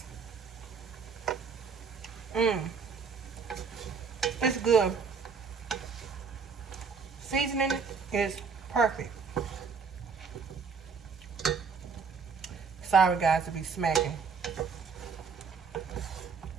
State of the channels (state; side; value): quieter; left; 5.6 dB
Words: It's good. Seasoning is perfect. Sorry guys to be smacking.